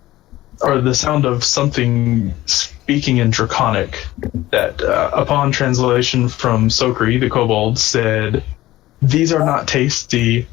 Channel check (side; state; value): right; quieter; 16.3 dB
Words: or the sound of something speaking in Draconic, that upon translation from Sokri, the kobold, said, "These are not tasty,